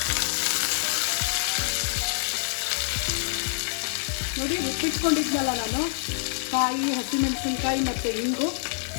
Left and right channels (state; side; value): silent; right; digital silence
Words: ನೋಡಿ, ಉಪ್ಪಿಟ್ಕೊಂಡಿದ್ನಲ್ಲ ನಾನು, ಕಾಯಿ, ಹಸಿಮೆಣಸಿನ್ಕಾಯಿ ಮತ್ತು ಇಂಗು,